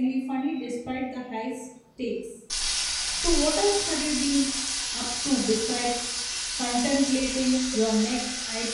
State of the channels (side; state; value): both; identical; correlation 1.00